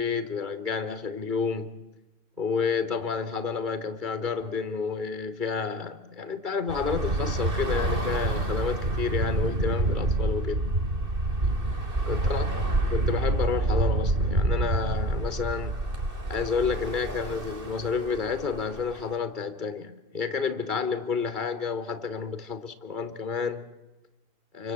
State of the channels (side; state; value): left; late; 2.6 ms